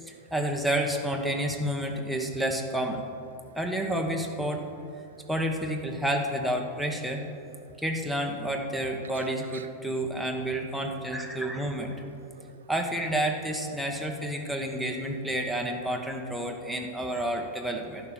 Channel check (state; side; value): normal; both; correlation 0.47